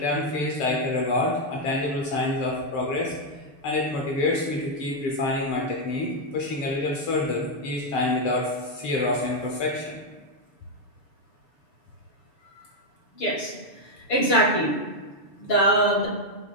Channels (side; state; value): right; late; 6.9 ms